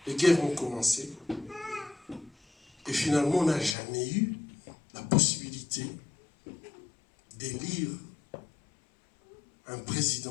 les guerres ont commencé. Et finalement, on n'a jamais eu la possibilité d'élire un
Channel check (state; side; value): drops out; right; at 3.8 s